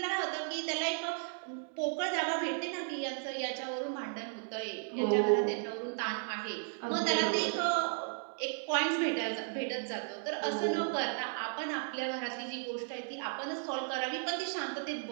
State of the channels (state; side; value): silent; left; 54 dB below the other